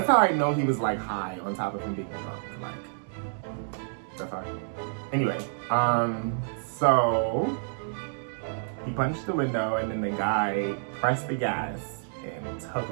how I know he was like high on top of him being drunk, like. Anyway, so he punched the window, and then the guy pressed the gas and took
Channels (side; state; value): left; silent; digital silence